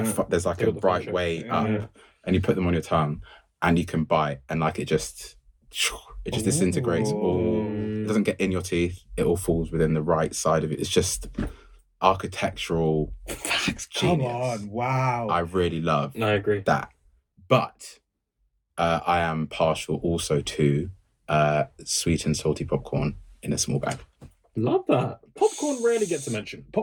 there's like a bright way up, and you put them on your tongue, and you can bite, and like it just disintegrates. It doesn't get in your teeth. It all falls within the right side of it. It's just architectural genius. Come on, wow. I really love I agree. that. But I am partial also to sweet and salty popcorn in a small bag. Love that. Popcorn rarely gets a mention.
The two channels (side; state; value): both; identical; correlation 1.00